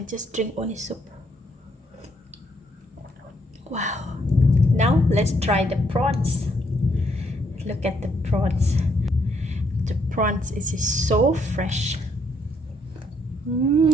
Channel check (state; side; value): normal; both; correlation 0.72